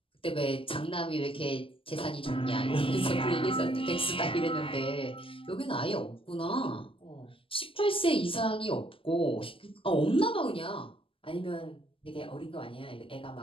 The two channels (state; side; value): late; right; 0.26 ms